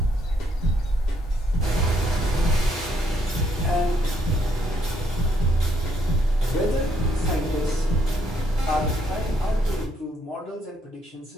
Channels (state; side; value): normal; both; correlation 0.72